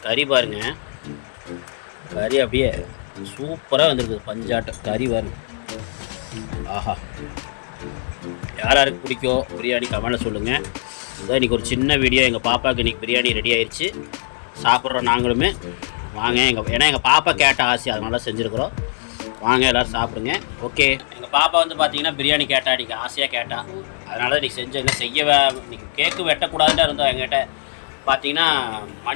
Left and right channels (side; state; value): right; silent; 65 dB below the other